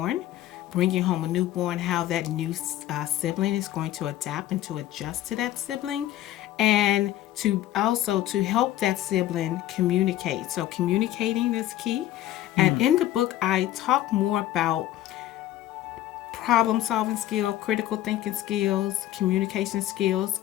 bringing home a newborn, how that new sibling is going to adapt and to adjust to that sibling, and to also to help that sibling communicate. So communicating is key. And in the book, I talk more about problem solving skill, critical thinking skills, communication skills.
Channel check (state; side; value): quieter; right; 13.7 dB